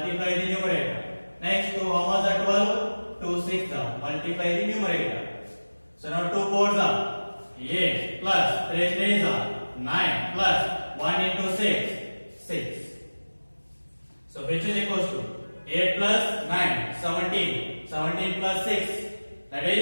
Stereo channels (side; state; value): both; inverted; correlation -1.00